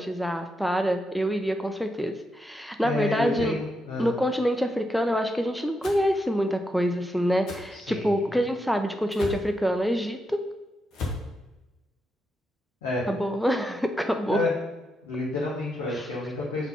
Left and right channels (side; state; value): both; normal; correlation 0.84